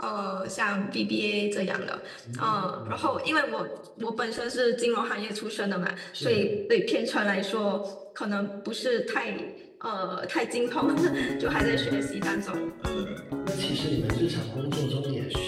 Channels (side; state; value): both; identical; correlation 1.00